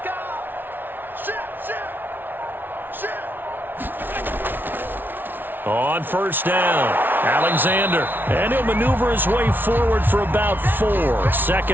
On first down, Alexander, and he'll maneuver his way forward for about 4.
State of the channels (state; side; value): late; left; 0.096 ms